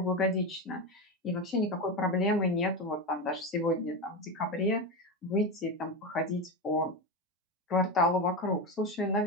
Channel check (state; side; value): normal; both; correlation 0.17